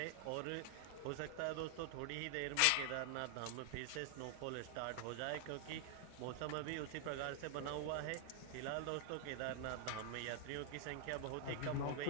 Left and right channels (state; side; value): different; both; correlation 0.00